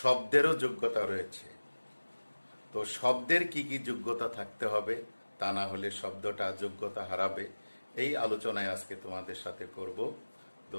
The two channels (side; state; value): both; inverted; correlation -1.00